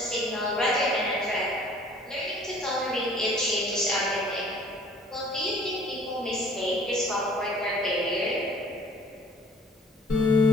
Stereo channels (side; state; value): both; normal; correlation 0.53